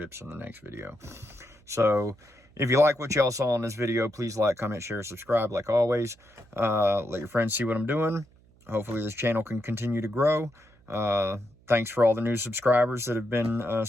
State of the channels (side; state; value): right; noise; hum, 30 dB below the sound